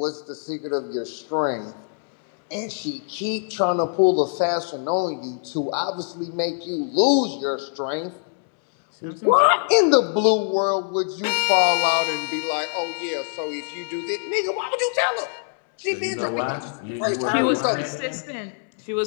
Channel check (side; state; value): right; silent; 63 dB below the other